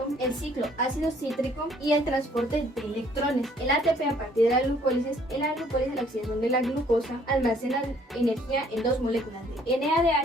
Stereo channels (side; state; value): both; normal; correlation 0.62